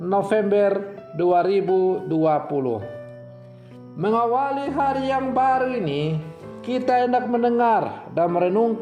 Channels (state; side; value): identical; both; correlation 1.00